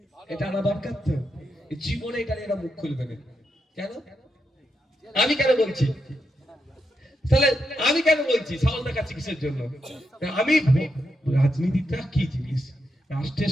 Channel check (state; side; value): normal; both; correlation 0.84